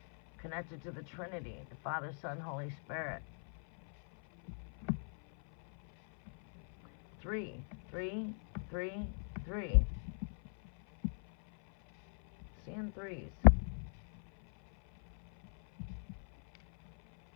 Connected to the Trinity, the Father, Son, Holy Spirit. 3, 3, 3, 3. Seeing 3s.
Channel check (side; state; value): right; silent; 52 dB below the other